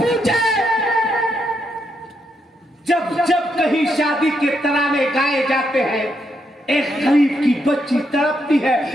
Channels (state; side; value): normal; both; correlation 0.79